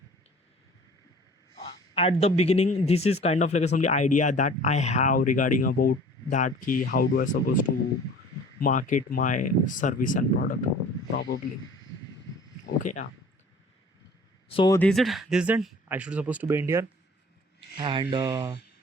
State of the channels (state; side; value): normal; both; correlation 0.47